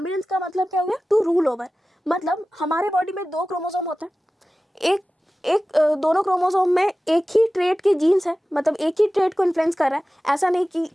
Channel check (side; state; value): both; normal; correlation 0.96